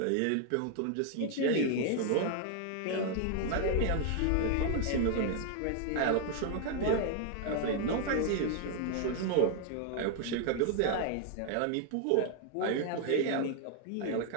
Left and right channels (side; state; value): both; different; correlation 0.00